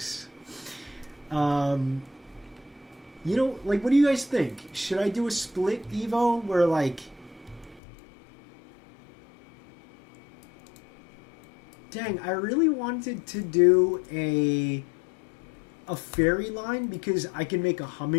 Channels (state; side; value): drops out; right; at 7.8 s